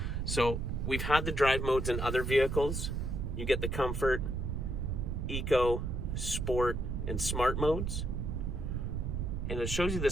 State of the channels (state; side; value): noise; right; rumble, 2 dB below the sound